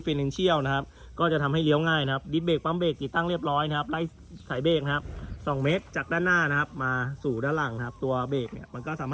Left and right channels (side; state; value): both; identical; correlation 1.00